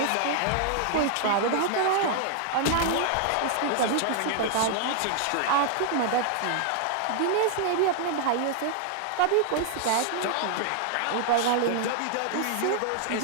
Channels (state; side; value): different; both; correlation 0.00